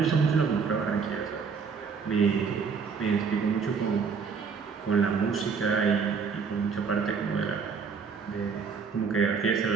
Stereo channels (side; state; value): left; quieter; 5.7 dB